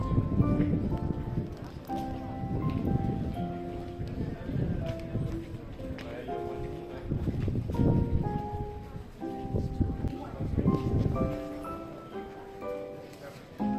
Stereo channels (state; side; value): identical; both; correlation 1.00